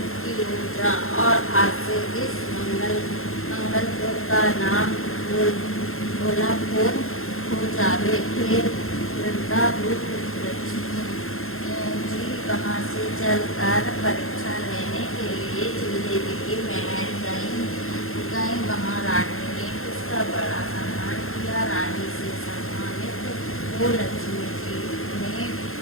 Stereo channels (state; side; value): late; right; 0.61 ms